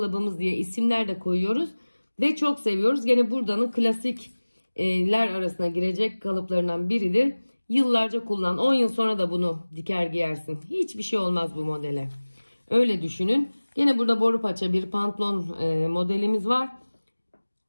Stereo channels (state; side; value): inverted; both; correlation -1.00